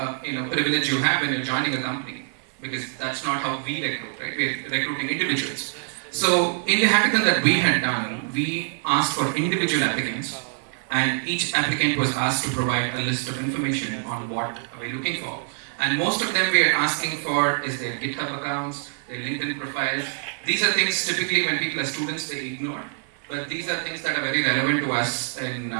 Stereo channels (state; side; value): silent; left; 62 dB below the other